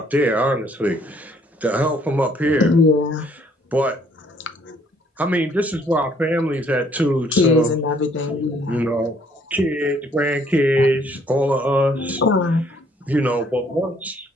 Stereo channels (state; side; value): normal; both; correlation 0.63